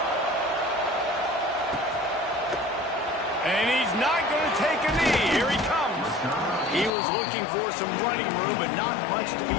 And he's not going to take a knee. Here he comes. He was looking for some running room, but not much to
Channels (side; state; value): right; drops out; at 6.9 s